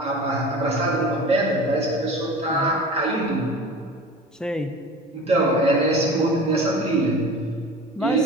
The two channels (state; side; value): normal; both; correlation 0.37